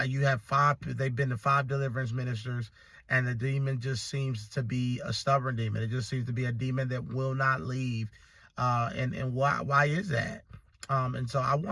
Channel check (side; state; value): both; identical; correlation 1.00